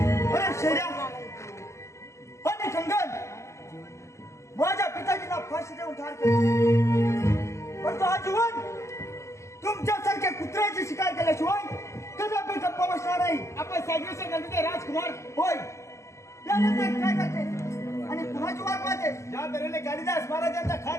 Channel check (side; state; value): right; late; 0.14 ms